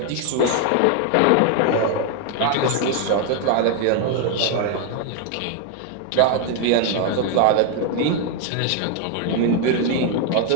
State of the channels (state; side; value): different; both; correlation 0.00